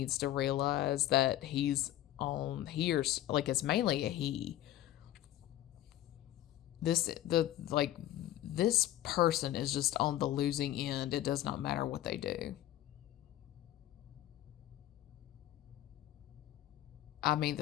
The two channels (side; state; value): right; quieter; 13.7 dB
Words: to realize that he's on here's like it's mainly a he. This person is just on the losing end. It does not matter what they do. I mean,